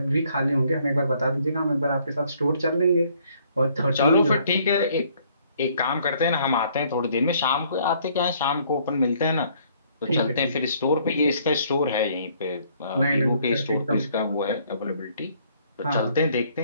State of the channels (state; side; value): inverted; both; correlation -0.64